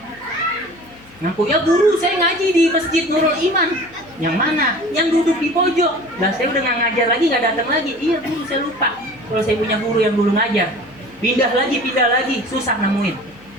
Ngaku, ya guru saya ngaji di Masjid Nurul Iman. Yang mana? Yang duduk di pojok. Dan saya udah nggak ngajar lagi, nggak datang lagi. Iya guru, saya lupa. Kalau saya punya guru yang dulu ngajar, pindah lagi, susah nemuin.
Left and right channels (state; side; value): noise; left; hum, 25 dB below the sound